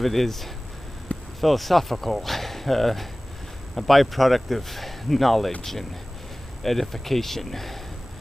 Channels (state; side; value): normal; both; correlation 0.98